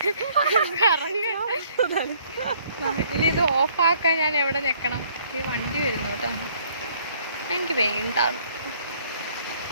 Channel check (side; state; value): both; inverted; correlation -0.62